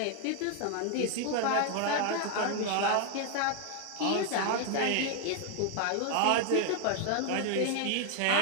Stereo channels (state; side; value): different; both; correlation 0.01